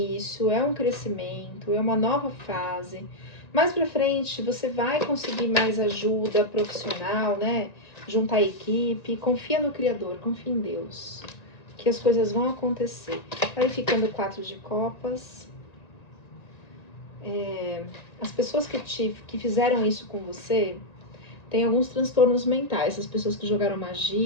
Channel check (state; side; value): late; right; 1.9 ms